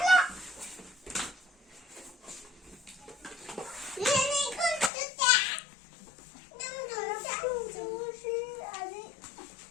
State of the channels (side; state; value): right; drops out; at 4.9 s